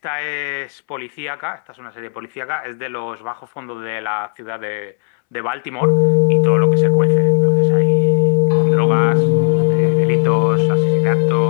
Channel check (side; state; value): right; silent; 69 dB below the other